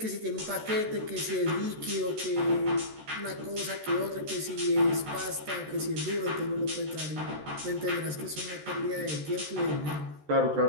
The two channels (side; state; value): left; late; 13 ms